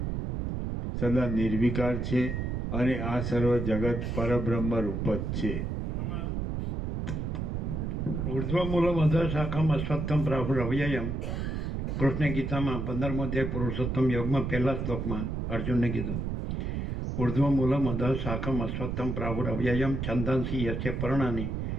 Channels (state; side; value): noise; right; rumble, 2 dB below the sound